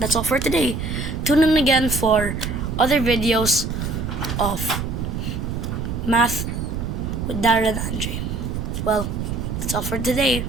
all for today. Tune in again for other videos of math with Darren and Andre. Well, that's all for today.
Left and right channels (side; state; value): right; noise; rumble, 3 dB below the sound